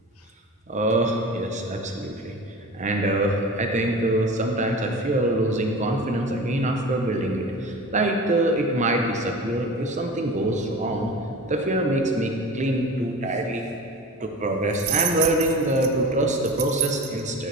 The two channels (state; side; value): normal; both; correlation 0.34